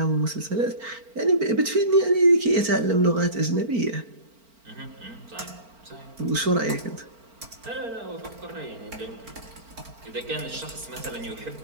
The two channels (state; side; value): late; left; 4.4 ms